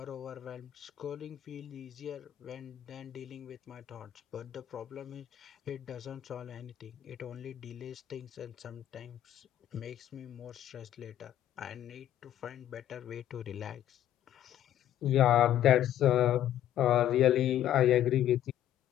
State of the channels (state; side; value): quieter; right; 11.9 dB